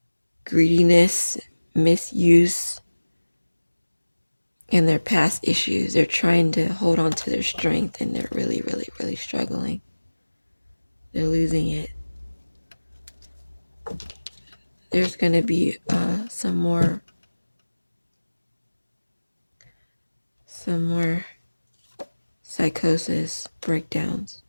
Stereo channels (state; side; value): inverted; both; correlation -1.00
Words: greediness, misuse, and their past issues. They're trying to hold on to their strength and they're really, really, really struggling. They're losing it. There's going to be some more psychosis, breakdowns,